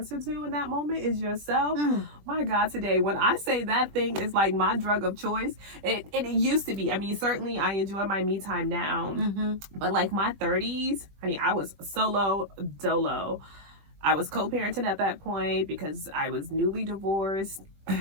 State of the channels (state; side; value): late; left; 20 ms